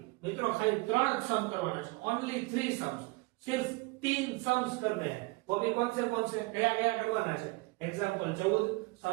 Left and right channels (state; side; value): quieter; left; 24.4 dB